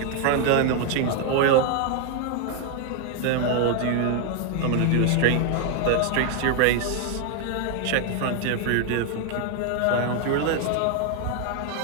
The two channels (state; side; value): different; both; correlation 0.00